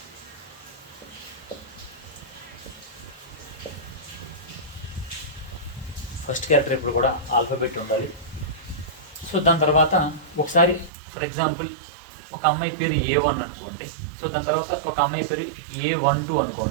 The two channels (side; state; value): left; drops out; at 10.9 s